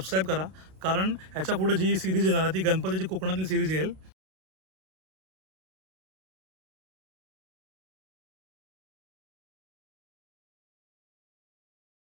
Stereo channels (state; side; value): late; left; 32 ms